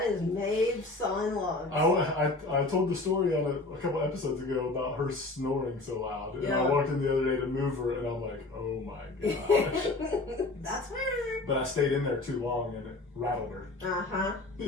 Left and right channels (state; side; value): quieter; right; 3.1 dB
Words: is Maeve sawing logs. I told the story on a couple episodes ago about her snoring so loud. And I walked in the other day to move her, and I'm like, oh my gosh. That's her. But I stayed in there too long, and it rattled her. Uh-huh. See